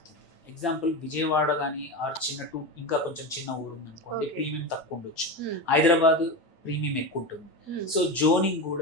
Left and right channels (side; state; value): right; late; 9.0 ms